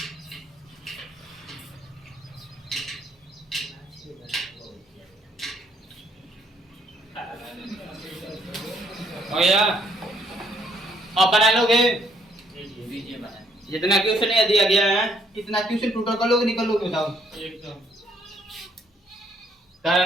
हो गया। अब बना लोगे बीजे बना जितना क्वेश्चन ये दिया गया है, कितना क्वेश्चन टोटल कर लोगे, निकल लोगे बताओ। एकदम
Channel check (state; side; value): normal; both; correlation 0.67